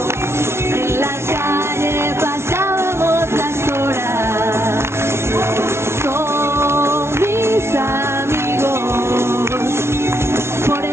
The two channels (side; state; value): left; late; 0.12 ms